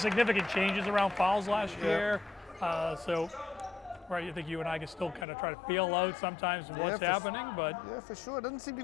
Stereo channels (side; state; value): right; drops out; at 5.2 s